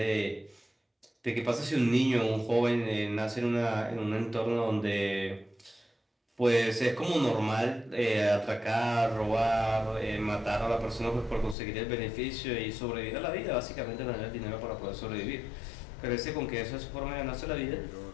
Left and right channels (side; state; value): right; drops out; at 11.6 s